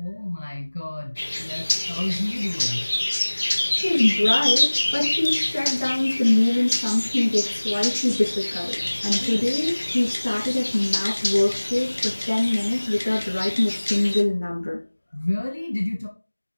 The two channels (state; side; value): inverted; both; correlation -1.00